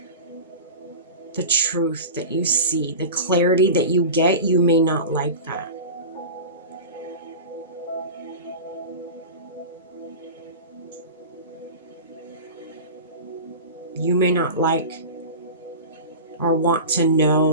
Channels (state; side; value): inverted; both; correlation -0.30